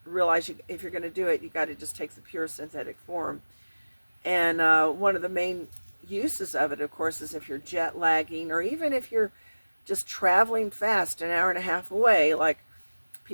realize if you're going to do it, you got to just take the pure synthetic form. And one of the main uses of it, of course, is if you're jet lagging, or even if you're just traveling fast, an hour and a half away, like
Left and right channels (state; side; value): inverted; both; correlation -1.00